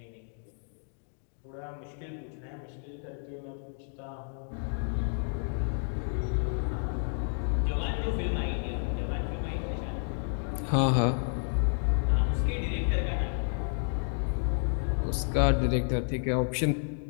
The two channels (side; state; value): right; silent; 57 dB below the other